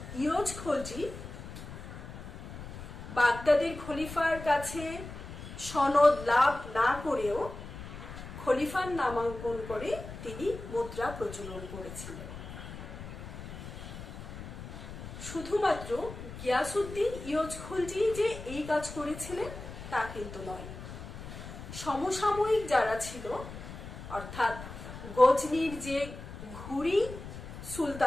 ইয়োজ খলজি বাগদাদের খলিফার কাছে সনদ লাভ না করেও খলিফার নামাঙ্কন করে তিনি মুদ্রা প্রচলন করেছিলেন। শুধুমাত্র গিয়াসউদ্দিন ইয়োজ খলজি যে এই কাজ করেছিলেন তা কিন্তু নয়, সমসাময়িক যারা ছিল, অর্থাৎ গজনির যে ঘুরি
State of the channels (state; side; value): noise; left; rumble, 11 dB below the sound